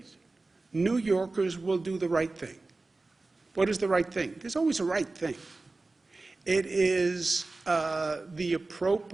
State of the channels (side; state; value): left; quieter; 3.4 dB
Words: New Yorkers will do the right thing. What is the right thing? There's always a right thing. It is the